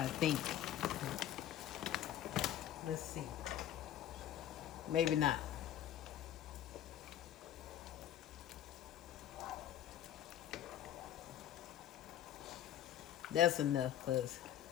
think. Let's see. Maybe not. That's enough, because,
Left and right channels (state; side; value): quieter; right; 11.4 dB